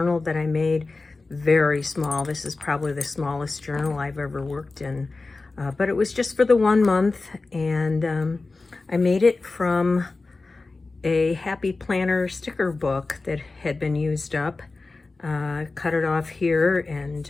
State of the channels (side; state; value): right; quieter; 3.6 dB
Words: that I made. Very small. This is probably the smallest journal I've ever worked in, but it was just for the 1 month, and I made it from a Happy Planner sticker book that had been used up. Cut it off here